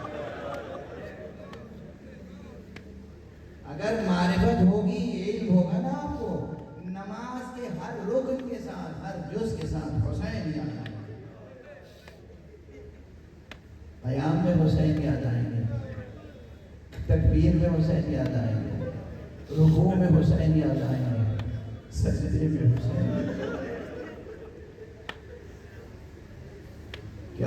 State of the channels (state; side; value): identical; both; correlation 1.00